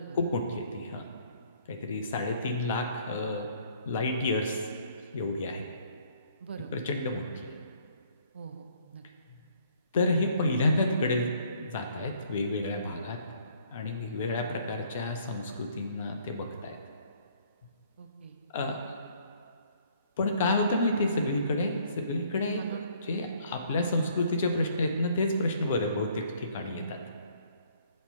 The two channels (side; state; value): both; inverted; correlation -0.61